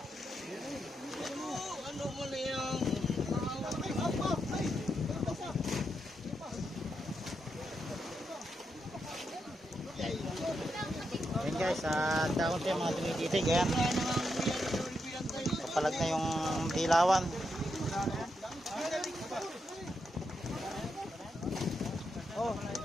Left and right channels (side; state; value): both; normal; correlation 0.83